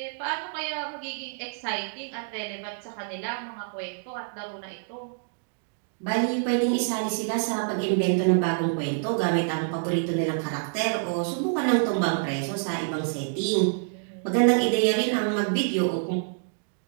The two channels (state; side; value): silent; left; digital silence